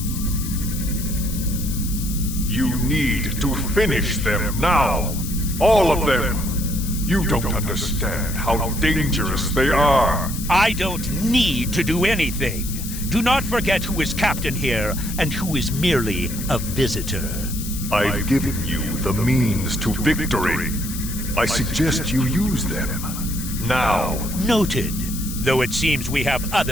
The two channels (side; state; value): left; noise; hiss, 9 dB below the sound